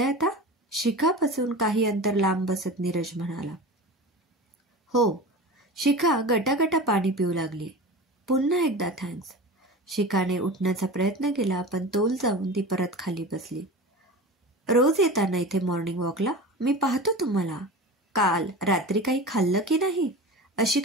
आता? शिखापासून काही अंतर लांब बसत नीरज म्हणाला। हो, शिखा गटागटा पाणी पिऊ लागली। पुन्हा एकदा थँक्स। शिखाने उठण्याचा प्रयत्न केला पण तोल जाऊन ती परत खाली बसली। रोज येताना इथे मॉर्निंग वॉकला मी पाहतो तुम्हाला। काल रात्री काही खाल्लं की नाही? अशी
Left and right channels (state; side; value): normal; both; correlation 0.32